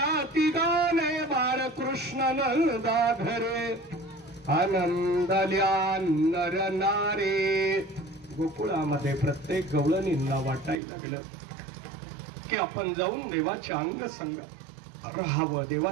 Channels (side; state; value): left; drops out; at 10.8 s